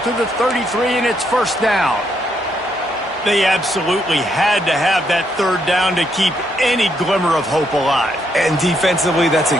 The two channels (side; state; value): both; normal; correlation 0.75